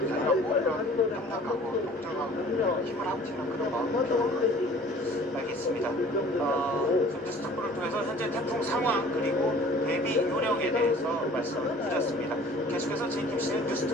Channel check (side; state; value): both; normal; correlation 0.49